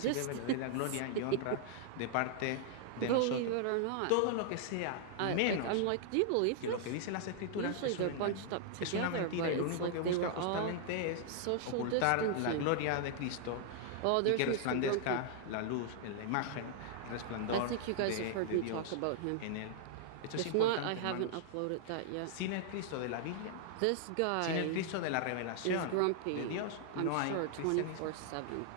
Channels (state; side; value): different; both; correlation -0.01